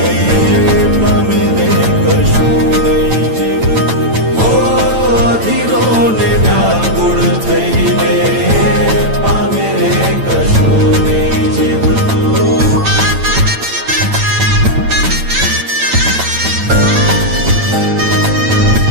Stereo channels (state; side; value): late; left; 9.0 ms